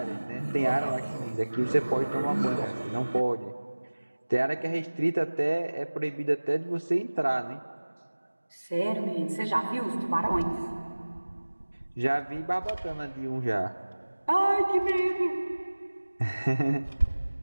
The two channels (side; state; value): both; inverted; correlation -1.00